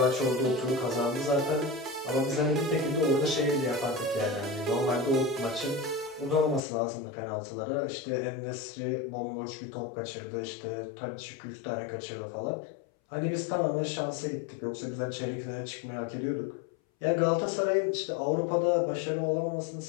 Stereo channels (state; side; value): drops out; right; at 6.6 s